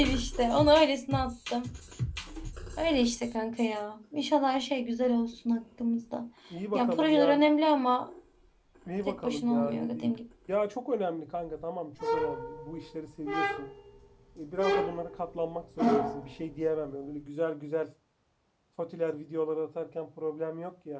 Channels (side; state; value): both; identical; correlation 1.00